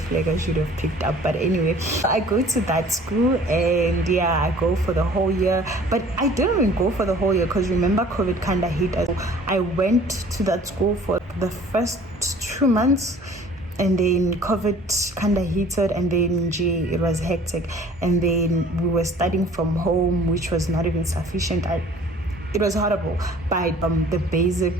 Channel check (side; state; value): both; normal; correlation 0.50